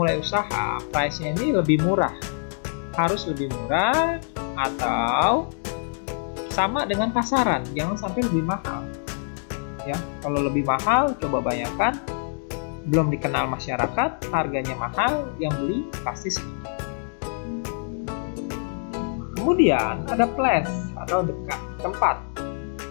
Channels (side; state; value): right; silent; digital silence